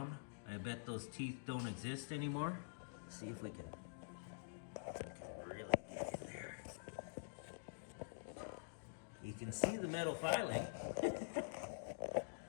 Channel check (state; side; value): silent; right; digital silence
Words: I bet those teeth don't exist anymore. See if we can really get in there. You can see the metal filing.